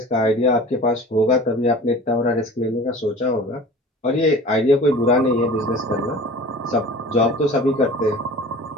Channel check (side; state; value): both; normal; correlation 0.41